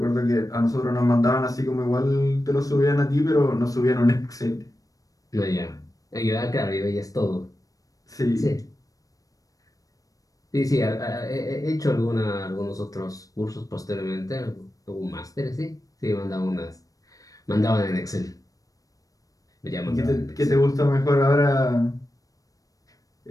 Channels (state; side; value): late; right; 0.17 ms